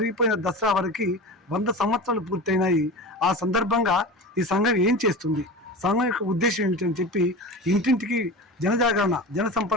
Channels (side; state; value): both; normal; correlation 0.30